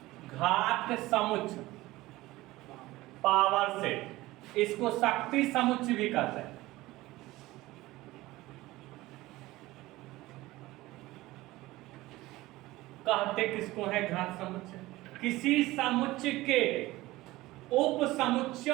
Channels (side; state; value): left; quieter; 18.5 dB